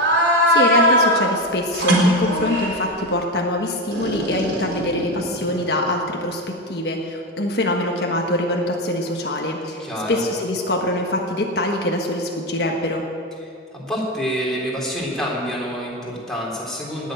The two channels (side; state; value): both; normal; correlation 0.16